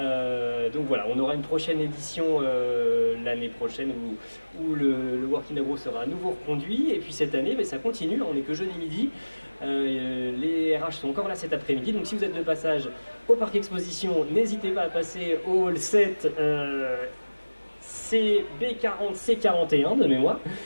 voilà, on aura une prochaine édition l'année prochaine où le Working Agro sera à nouveau reconduit, et puis cette année ça continue, on n'est que jeudi midi. Les RH sont encore là cet après-midi, donc si vous êtes de passage au Parc Exposition, n'hésitez pas à passer au hall 7 CB40 C41 de mémoire.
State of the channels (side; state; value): both; inverted; correlation -1.00